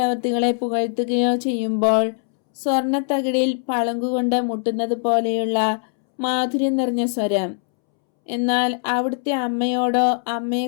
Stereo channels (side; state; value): right; silent; 65 dB below the other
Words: പുകഴ്ത്തുകയോ ചെയ്യുമ്പോൾ സ്വർണത്തകിടിൽ പളുങ്കുകൊണ്ട് മുട്ടുന്നത് പോലെയുള്ള മാധുര്യം നിറഞ്ഞ സ്വരം. എന്നാൽ അവിടുത്തെ അമ്മയോടോ